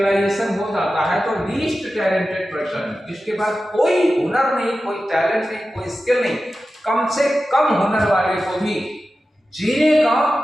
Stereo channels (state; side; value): normal; both; correlation 0.93